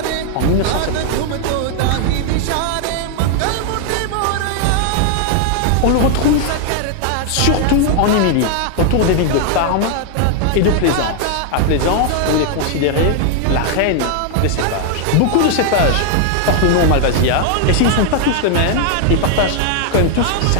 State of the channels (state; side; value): different; both; correlation 0.00